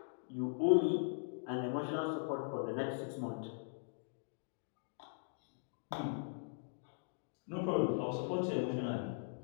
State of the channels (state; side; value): silent; right; digital silence